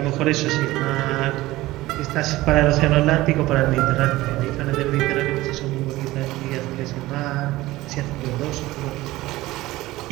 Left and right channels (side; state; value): left; quieter; 17.9 dB